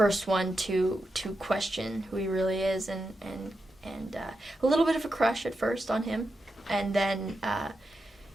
one to question who he really is, and a little bit of a crush at first on him, and then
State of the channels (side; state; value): both; normal; correlation 0.87